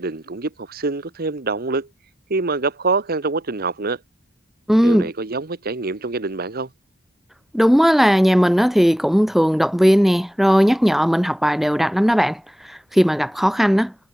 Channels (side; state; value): both; normal; correlation 0.88